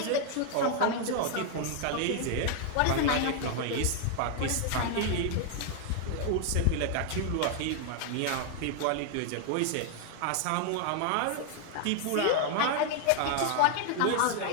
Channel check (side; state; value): both; different; correlation 0.00